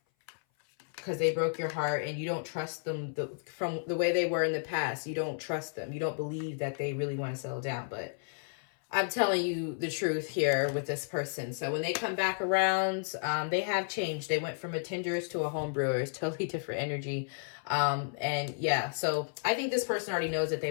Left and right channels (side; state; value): right; silent; 56 dB below the other